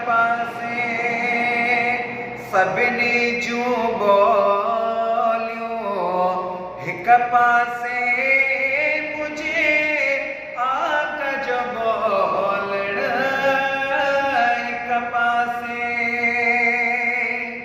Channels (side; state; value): both; identical; correlation 1.00